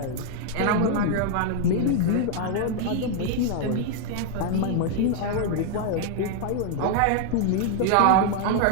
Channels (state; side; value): different; both; correlation 0.00